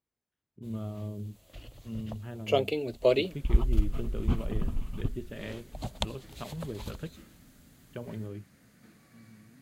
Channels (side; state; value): both; identical; correlation 1.00